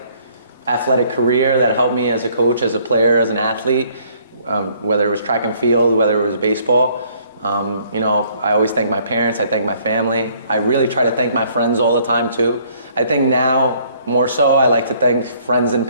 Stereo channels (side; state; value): both; inverted; correlation -0.63